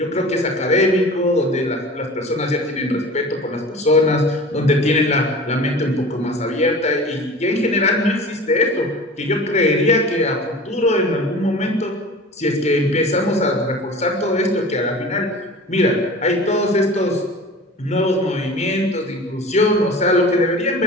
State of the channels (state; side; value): normal; both; correlation 0.39